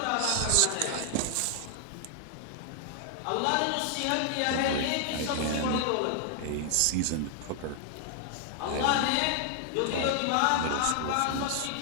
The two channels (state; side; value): different; both; correlation 0.00